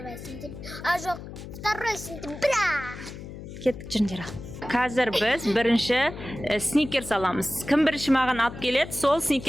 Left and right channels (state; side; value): noise; left; hum, 12 dB below the sound